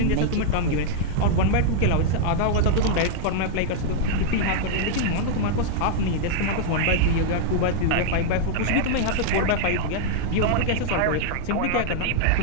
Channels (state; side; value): different; both; correlation 0.00